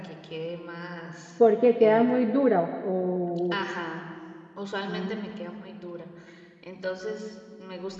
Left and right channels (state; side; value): identical; both; correlation 1.00